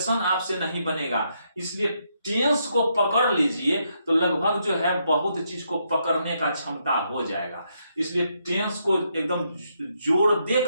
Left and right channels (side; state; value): both; inverted; correlation -0.77